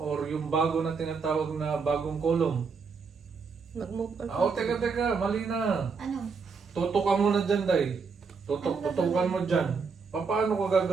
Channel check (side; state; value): left; quieter; 5.2 dB